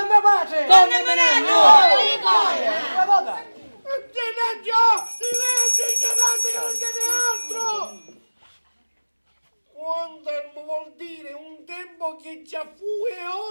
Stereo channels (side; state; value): both; inverted; correlation -1.00